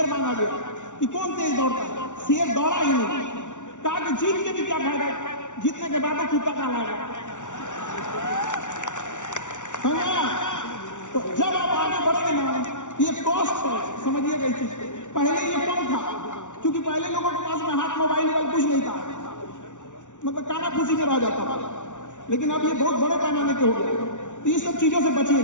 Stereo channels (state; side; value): late; right; 0.86 ms